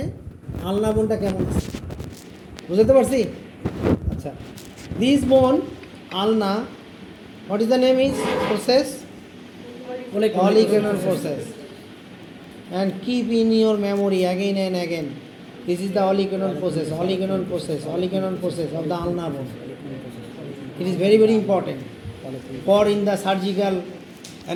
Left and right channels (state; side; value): identical; both; correlation 1.00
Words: আলনা বোনটা কেমন আছে, বুঝতে পারছি? আচ্ছা, দিস বোন আলনা, what is the name is process? Oligoclonal process. And keep in your memory again and again. This is the oligoclonal process of the ulnar bone. It is very, very important for in the surgical